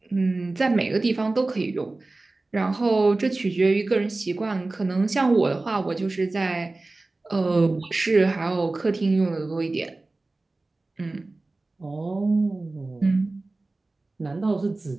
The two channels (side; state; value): left; quieter; 3.1 dB